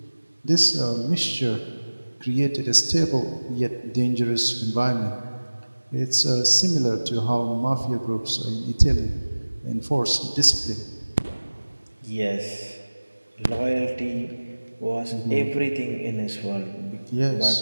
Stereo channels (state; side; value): inverted; both; correlation -1.00